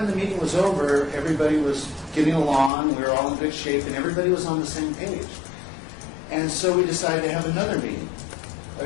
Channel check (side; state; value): right; drops out; at 2.7 s